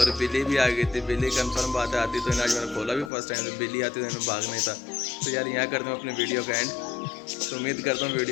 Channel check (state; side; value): drops out; right; at 3.1 s